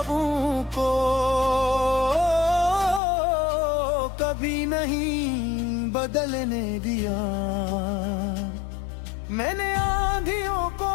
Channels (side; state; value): right; drops out; at 3.0 s